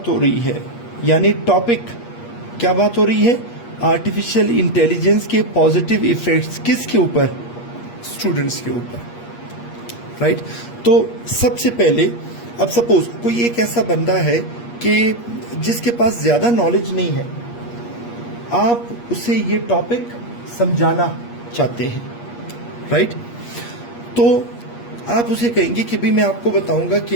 हो रही है, यानी टॉपिक क्या बात हो रही है, आर्टिफिशियल इंटेलिजेंस के पॉजिटिव इफेक्ट्स किसके ऊपर, स्टूडेंट्स के ऊपर, राइट। तो सबसे पहले अब सपोज कोई एक ऐसा बंदा है कि जिसके पास ज्यादा नॉलेज नहीं है, आप उसे ये टॉपिक समझाना चाहते हैं, राइट। तो आप उसे कहेंगे कि भाई मैं आपको बताऊंगा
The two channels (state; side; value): late; right; 8.4 ms